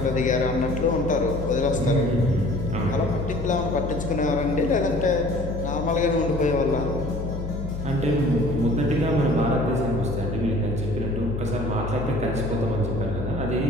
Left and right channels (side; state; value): left; noise; hum, 6 dB below the sound